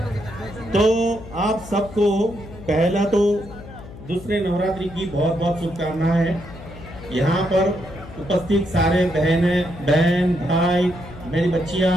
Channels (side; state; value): left; noise; hum, 15 dB below the sound